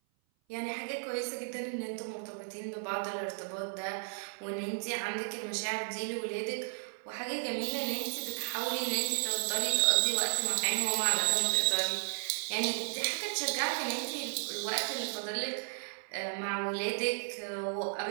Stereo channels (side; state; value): left; silent; 55 dB below the other